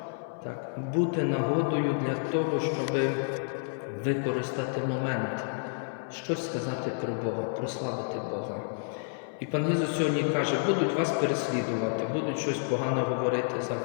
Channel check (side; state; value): right; silent; 58 dB below the other